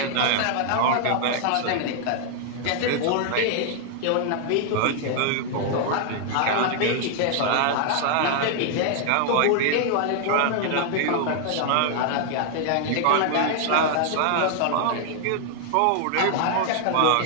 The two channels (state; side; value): different; both; correlation 0.00